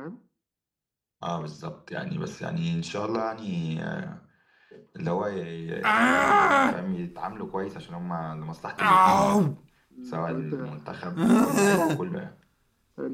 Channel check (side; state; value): both; identical; correlation 1.00